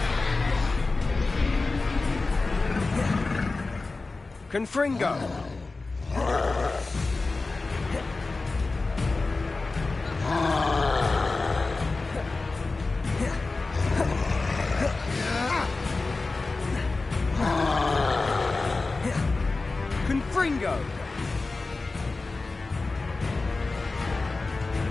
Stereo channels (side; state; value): right; quieter; 3.6 dB